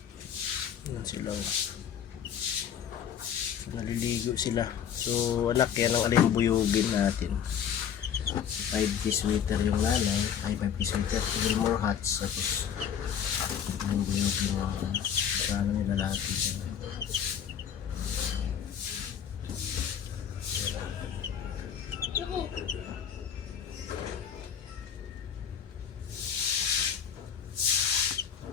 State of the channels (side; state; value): right; quieter; 8.5 dB